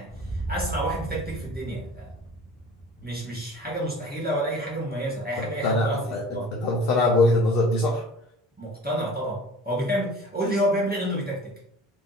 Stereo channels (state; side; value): normal; both; correlation 0.44